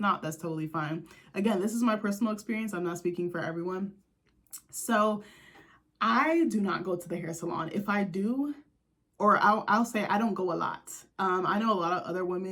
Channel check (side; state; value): both; identical; correlation 1.00